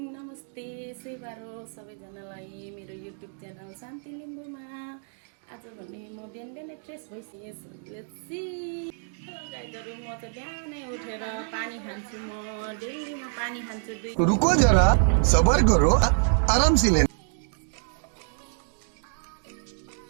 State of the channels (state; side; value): silent; left; 60 dB below the other